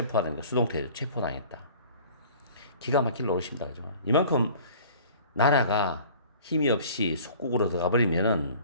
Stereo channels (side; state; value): both; inverted; correlation -0.47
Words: 수동태죠. 체포당했다. 기가 막힐 노릇입니다. 그죠? 이만큼 나라가 힘이 없이 속국으로 들어가 버리면은